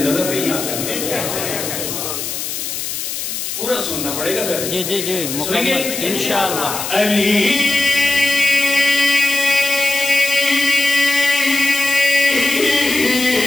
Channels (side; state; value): left; noise; hiss, 5 dB below the sound